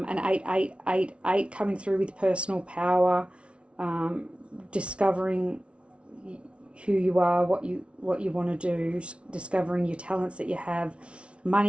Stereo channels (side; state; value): left; late; 0.060 ms